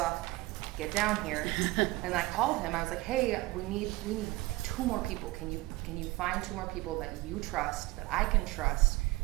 Get down here. And I called him. I was like, hey, we need 2 more people. Can you find 2 more people that you trust, that I can trust,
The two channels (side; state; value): left; quieter; 20.1 dB